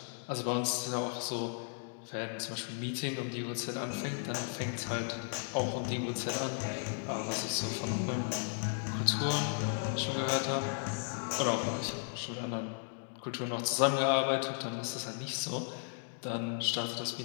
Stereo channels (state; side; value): silent; right; 54 dB below the other